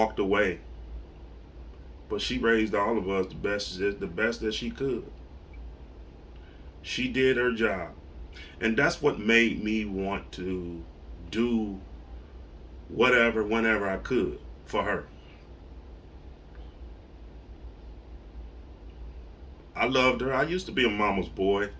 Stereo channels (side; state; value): both; identical; correlation 1.00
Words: away. But she raised all of us the best that she could. She did her job. And that's what made me want to do whatever, whenever I could for her. I loved her. I used to be a mama's boy.